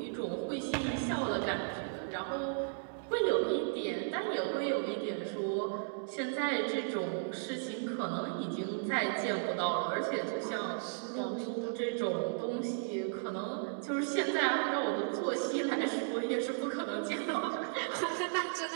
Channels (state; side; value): silent; left; digital silence